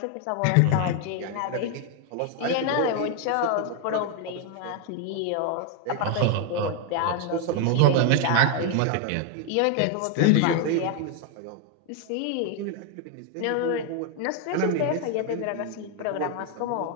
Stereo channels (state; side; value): different; both; correlation 0.00